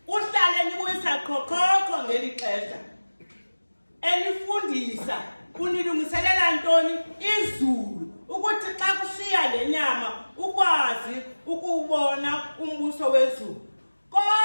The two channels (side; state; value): both; inverted; correlation -1.00